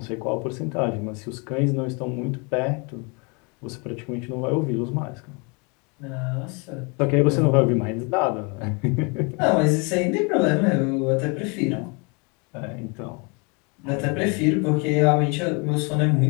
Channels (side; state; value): right; quieter; 31.8 dB